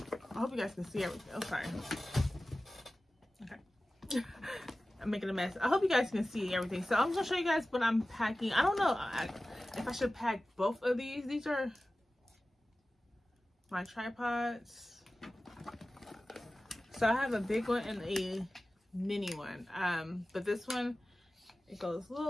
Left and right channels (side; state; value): both; normal; correlation 0.96